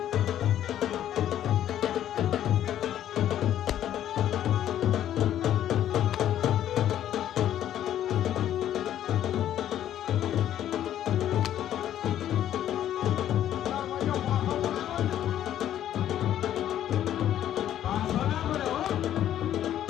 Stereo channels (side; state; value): right; quieter; 11.4 dB